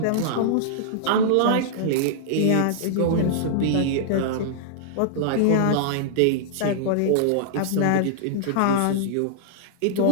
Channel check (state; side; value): different; both; correlation -0.01